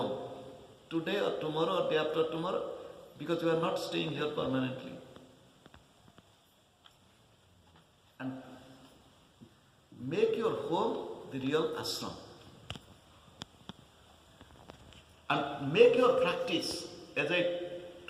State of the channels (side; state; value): both; identical; correlation 1.00